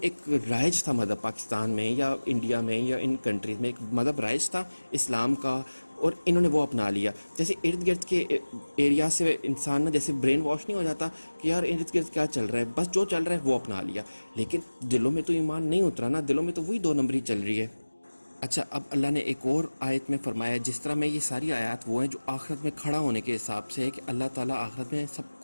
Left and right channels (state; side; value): inverted; both; correlation -1.00